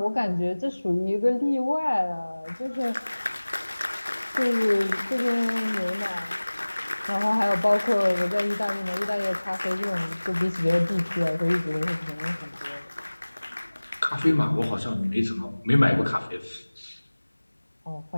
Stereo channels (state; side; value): inverted; both; correlation -1.00